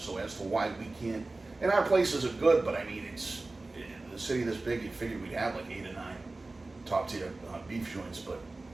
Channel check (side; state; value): left; quieter; 3.2 dB